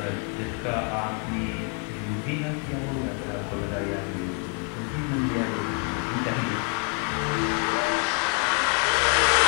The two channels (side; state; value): right; quieter; 35.7 dB